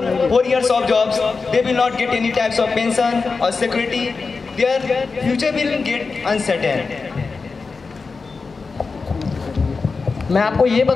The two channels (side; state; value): right; quieter; 4.5 dB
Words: four years of jobs, they will not get any types of pension or security. Their future will get uncertain. मैं आपको ये